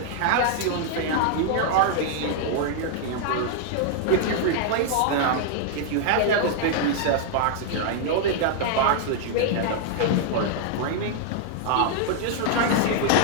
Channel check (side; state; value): both; different; correlation 0.00